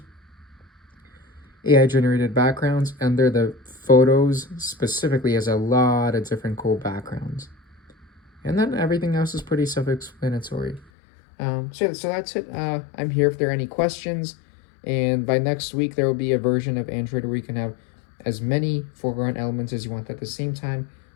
AI generated backgrounds, under the photos specifically has a lot of different cool backgrounds. And then everything else is pretty self-explanatory. So that's it. I'm here if there are any questions. And by next week, there will be a version of Android where you can have as many foreground elements as you want at the same time.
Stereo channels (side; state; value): right; drops out; at 10.9 s